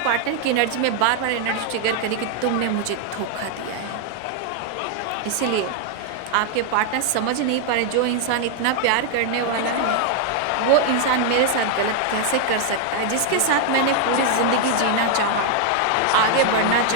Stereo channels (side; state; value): both; different; correlation 0.00